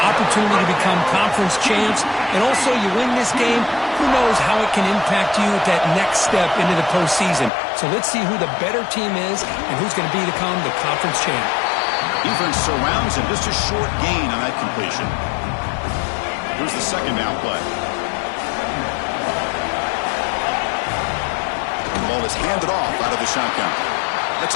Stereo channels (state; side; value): drops out; right; at 7.5 s